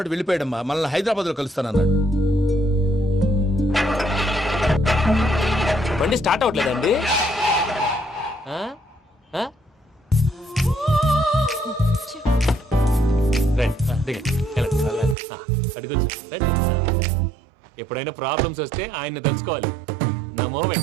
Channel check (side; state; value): left; drops out; at 15.2 s